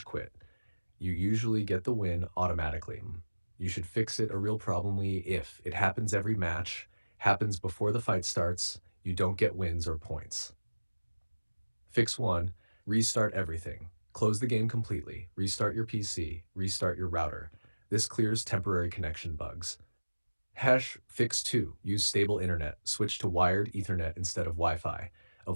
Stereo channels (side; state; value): both; inverted; correlation -1.00